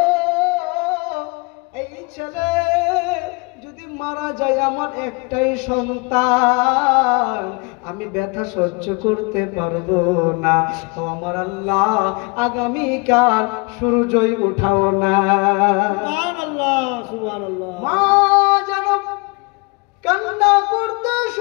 এই ছেলে যদি মারা যায় আমার একটাই সন্তান, আমি ব্যথা সহ্য করতে পারবো না। ও আমার আল্লাহ, আগামীকাল সূর্যই উঠাও না। সুবহানাল্লাহ, সুবহানাল্লাহ। মা যেন কান্না করতে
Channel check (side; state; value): right; quieter; 29.8 dB